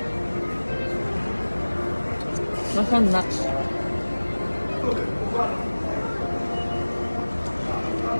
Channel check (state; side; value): inverted; both; correlation -1.00